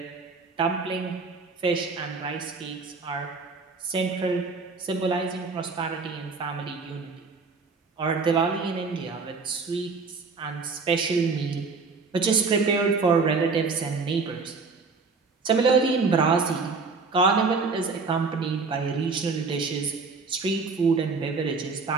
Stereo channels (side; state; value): left; quieter; 4.5 dB